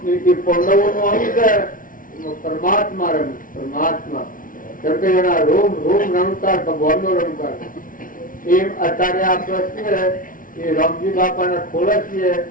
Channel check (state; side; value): late; right; 0.39 ms